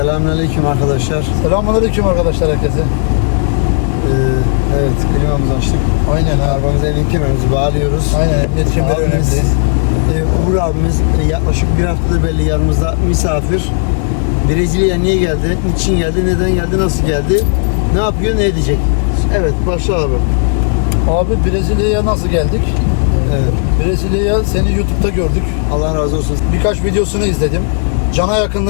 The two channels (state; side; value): silent; right; digital silence